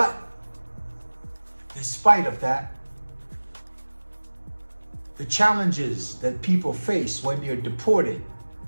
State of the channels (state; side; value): inverted; both; correlation -1.00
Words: spite of that, the challenges that people face when they're deported